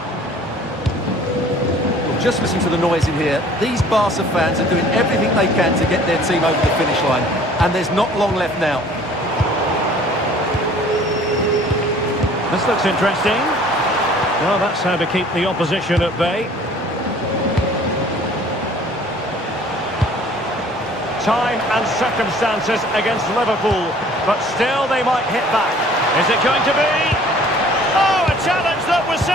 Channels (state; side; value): normal; both; correlation 0.52